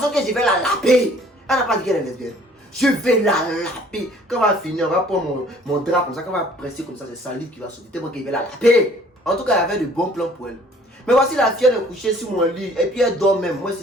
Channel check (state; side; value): normal; both; correlation 0.55